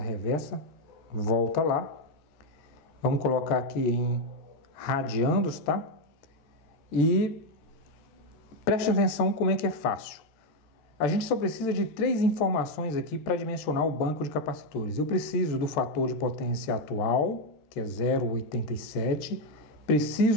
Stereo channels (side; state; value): right; late; 13 ms